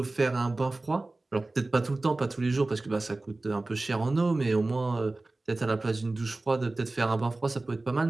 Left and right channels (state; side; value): quieter; left; 3.1 dB